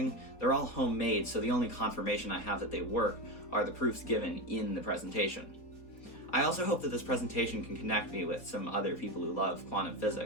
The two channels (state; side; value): late; right; 4.2 ms